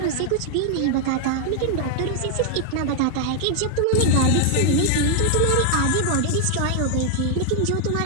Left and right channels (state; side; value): different; both; correlation 0.00